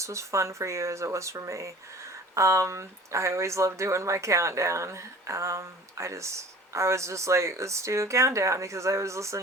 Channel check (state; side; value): normal; both; correlation 0.45